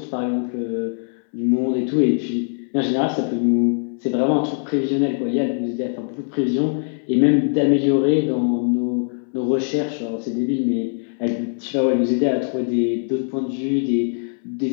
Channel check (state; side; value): silent; right; 61 dB below the other